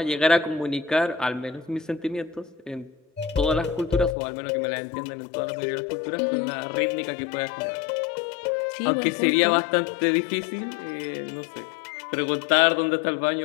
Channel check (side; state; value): right; drops out; at 4.2 s